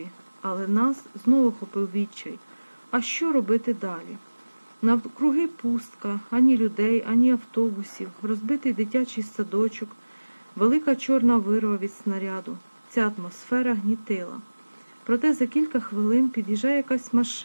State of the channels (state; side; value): inverted; both; correlation -1.00